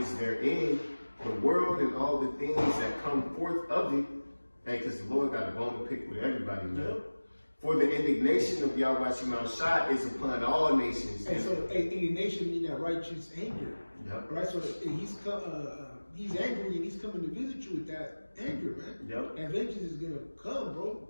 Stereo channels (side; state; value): both; inverted; correlation -1.00